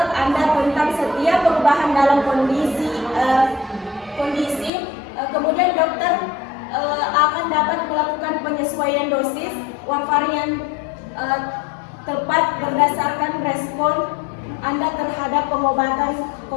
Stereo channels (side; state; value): right; drops out; at 4.7 s